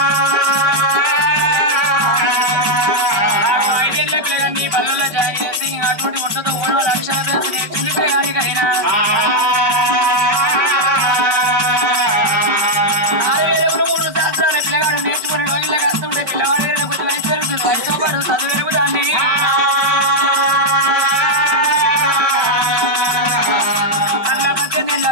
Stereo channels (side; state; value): left; late; 5.2 ms